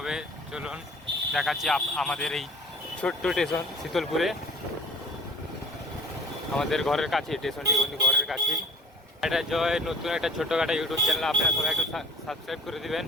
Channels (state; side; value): normal; both; correlation 0.45